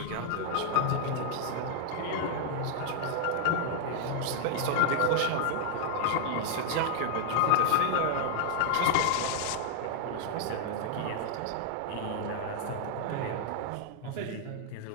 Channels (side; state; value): both; different; correlation 0.00